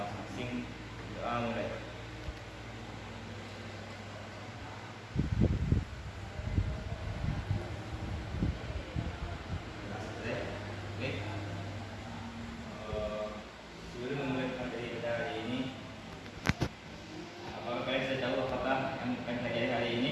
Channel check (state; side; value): identical; both; correlation 1.00